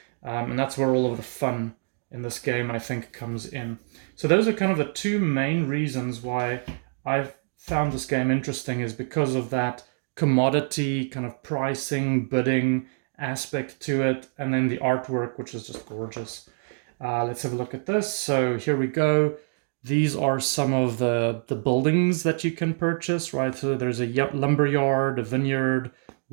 And that's where all of the fun in this game, I think, comes in. So those are kind of the 2 main reasons why I've found this game interesting, is because of that commodity kind of pricing, bidding aspect to it, and then the artwork, which is just gorgeous. Let's have a look at this. So here we go. These are some of the buildings that you can purchase, right? So there's a lumber yard, a vineyard,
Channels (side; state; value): left; silent; digital silence